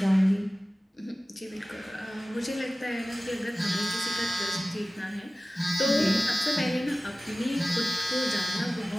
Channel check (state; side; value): normal; both; correlation 0.97